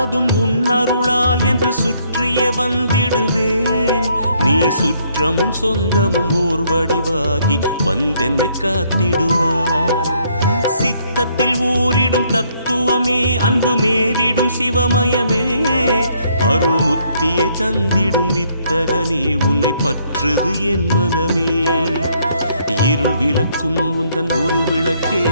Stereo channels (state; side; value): inverted; both; correlation -0.69